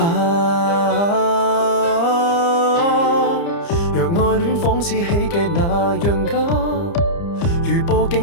若愛戀仿似喜劇那樣假，如佈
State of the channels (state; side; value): late; right; 30 ms